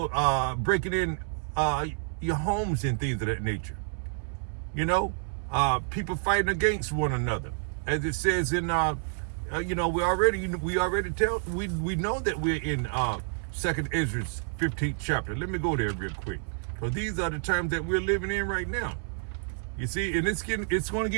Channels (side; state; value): left; silent; 59 dB below the other